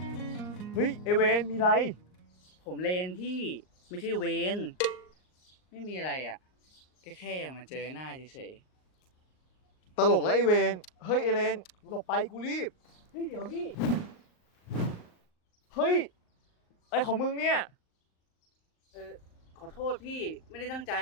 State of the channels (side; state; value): right; late; 38 ms